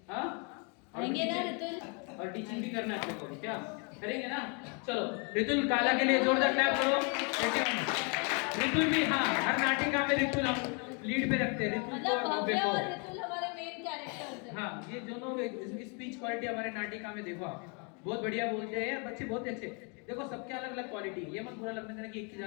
हाँ आएंगे ना रितुल, और टीचिंग भी करना चाहते हो क्या? करेंगे ना? चलो रितुल काला के लिए जोरदार क्लैप करो। रितुल भी, हाँ हर नाटिका में रितुल हम लीड पे रखते हैं, रितुल को और भव्य को। रितुल हमारे मेन कैरेक्टर्स हैं। हाँ ये दोनों, इसकी स्पीच क्वालिटी हमारे नाटिका में देखो आप, बहुत बढ़िया बोलते हैं बच्चे, बहुत अच्छे। देखो सबके अलग अलग क्वालिटी, ये मत बुरा लगने देना कि एक की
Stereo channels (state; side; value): quieter; right; 35.3 dB